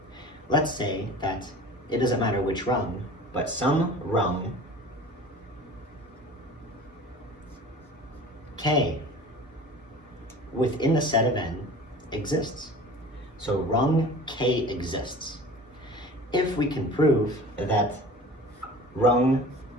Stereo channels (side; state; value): both; normal; correlation 0.40